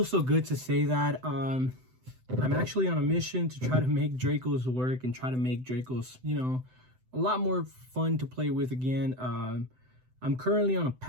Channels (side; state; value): left; late; 7.9 ms